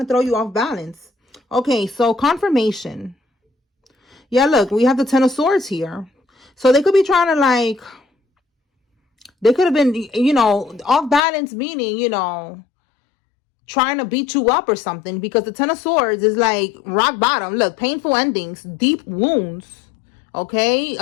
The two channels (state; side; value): drops out; right; at 11.2 s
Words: throw you off balance. Okay, so confirmation. Yeah, look, we have the 10 of Swords here. So they could be trying to, like, they could have been, you know, off balance, meaning, you know, trying to beat you up or something, because the 10 of Swords is like rock bottom. Look, painful endings, deep wounds. Okay,